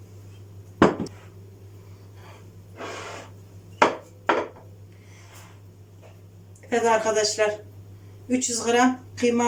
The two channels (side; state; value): both; identical; correlation 1.00